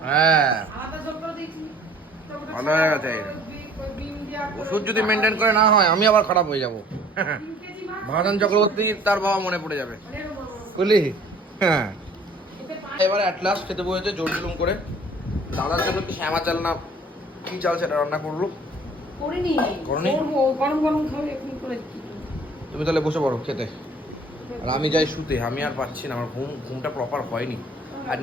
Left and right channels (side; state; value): both; normal; correlation 0.53